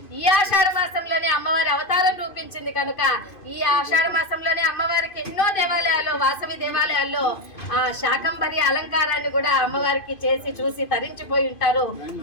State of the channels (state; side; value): late; right; 2.5 ms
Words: ఈ ఆషాఢ మాసంలోనే అమ్మవారి అవతారం రూపించింది కనుక ఈ ఆషాఢ మాసంలోనే అమ్మవారికి ఎన్నో దేవాలయాల్లో వాసవి దేవాలయాల్లో ఆ శాకంబరి అలంకారాన్ని కూడా అమ్మవారికి చేసి చూసి తరించిపోయి ఉంటారు